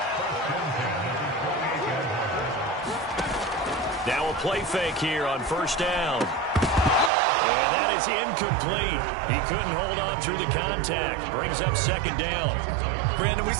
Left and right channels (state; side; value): drops out; left; at 7.1 s